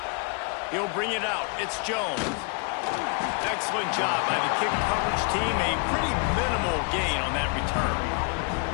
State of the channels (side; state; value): right; quieter; 35.2 dB